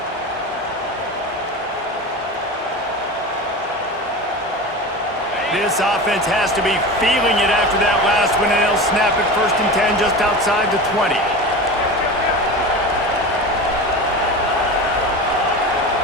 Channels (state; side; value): normal; both; correlation 0.29